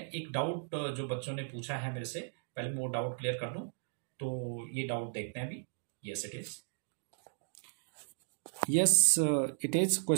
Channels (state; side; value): silent; left; digital silence